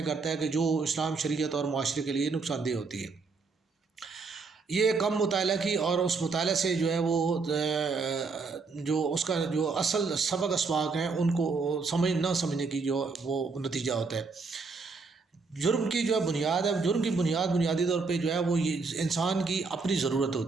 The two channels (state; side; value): quieter; left; 4.4 dB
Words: کرتا ہے کہ جو اسلام، شریعت اور معاشرے کے لیے نقصان دہ ہوتی ہے۔ یہ کم مطالعہ کی اور اس مطالعہ سے جو ہے وہ جو اس کا جو اصل سبق اسباق ہیں ان کو نہ سمجھنے کی جو وہ نتیجہ ہوتا ہے۔ جرم کی جو ہے بنیاد ہے، جرم کی بنیادی طور پہ جو ہے وہ یہ انسان کی اپنی ضرورت